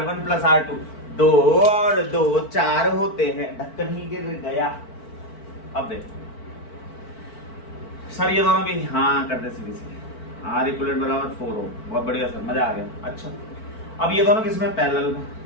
प्लस R2, 2 और 2 4 होते हैं, ढक्कन ही गिर गया। अब देख सर ये दोनों भी हाँ करते सीधे सीधे, आर इक्विवेलेंट बराबर 4 ओम, बहुत बढ़िया सर, मजा आ गया। अच्छा अब ये दोनों किसमें पैरेलल में,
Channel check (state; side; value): late; right; 4.5 ms